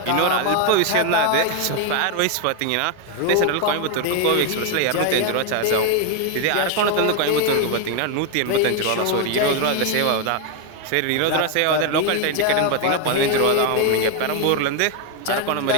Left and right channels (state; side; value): different; both; correlation 0.01